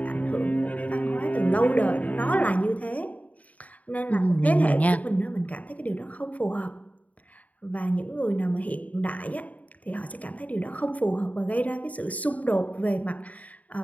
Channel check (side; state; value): right; late; 0.071 ms